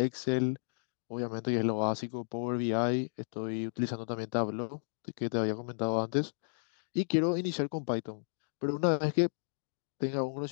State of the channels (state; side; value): silent; right; digital silence